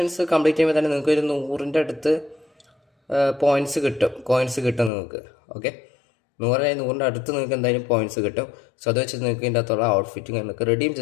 കംപ്ലീറ്റ് ചെയ്യുമ്പോൾ തന്നെ നിങ്ങൾക്ക് ഒരു 100ൻ്റെ അടുത്ത് കോയിൻസ് കിട്ടും നിങ്ങൾക്ക്. ഓക്കെ, 100ൻ്റെ അടുത്ത് നിങ്ങൾക്ക് എന്തായാലും പോയിൻറ്റ്സ് കിട്ടും. സോ അത് വെച്ച് നിങ്ങൾക്ക് ഇതിൻ്റെ അകത്തുള്ള ഔട്ട്ഫിറ്റിംഗ് നിങ്ങൾക്ക് റെഡീം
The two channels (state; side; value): drops out; right; at 4.9 s